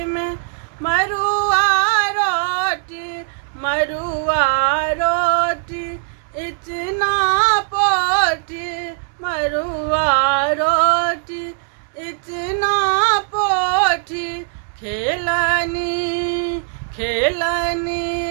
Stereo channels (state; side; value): silent; left; digital silence